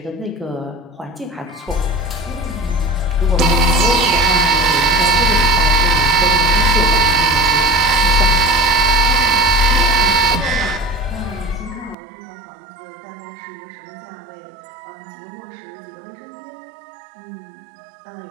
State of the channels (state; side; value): drops out; left; at 12.0 s